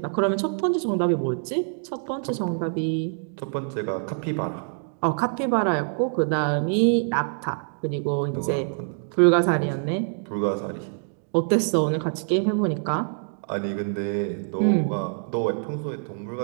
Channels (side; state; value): left; silent; digital silence